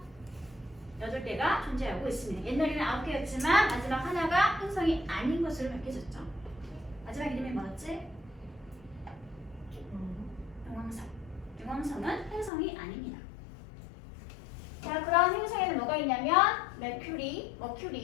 8개가 존재하고 있습니다. 옛날에는 9개였지만 마지막 하나가 행성이 아닌 것으로 밝혀졌죠. 마지막 이름이 뭐였지? 용왕성. 용왕성은 행성이 아닙니다. 자, 그런 행성에는 뭐가 있냐면 Mercury,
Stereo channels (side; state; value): right; drops out; at 12.5 s